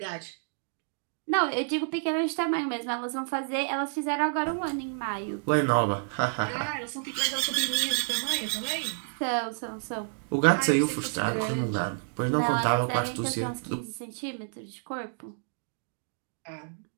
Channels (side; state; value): left; silent; digital silence